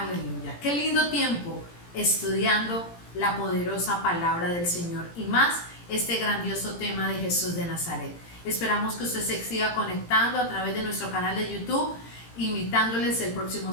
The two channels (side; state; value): right; late; 17 ms